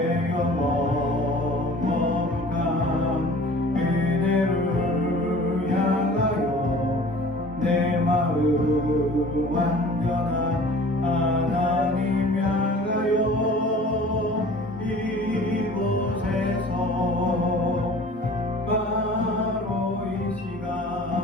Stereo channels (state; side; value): normal; both; correlation 0.46